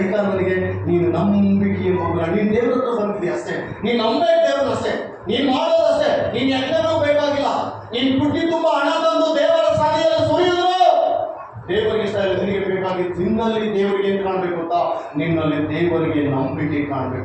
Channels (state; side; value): identical; both; correlation 1.00